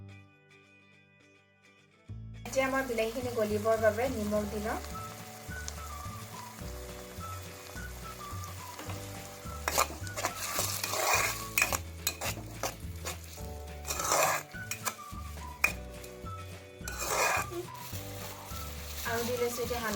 এতিয়া মই বিলাহীখিনি গলিবৰ বাবে নিমখ দি লওঁ। আৰু দি লৈছোঁ এতিয়া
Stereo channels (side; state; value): both; identical; correlation 1.00